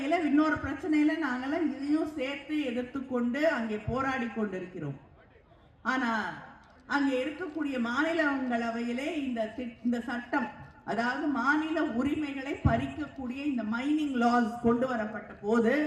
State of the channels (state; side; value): identical; both; correlation 1.00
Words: இன்னொரு பிரச்சனையில நாங்கெல்லாம் இதையும் சேர்த்து எதிர்த்து கொண்டு அங்கே போராடி கொண்டிருக்கிறோம். ஆனா அங்கே இருக்கக்கூடிய மாநிலங்களவையிலே இந்த சட்டம், அதாவது மாநில உரிமைகளை பறிக்கக்கூடிய இந்த மைனிங் லாஸ் கொண்டு வரப்பட்ட போது